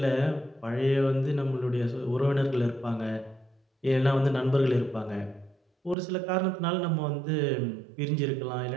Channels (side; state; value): left; drops out; at 6.0 s